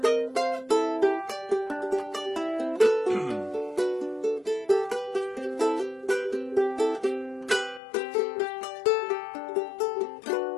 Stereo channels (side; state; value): right; drops out; at 7.8 s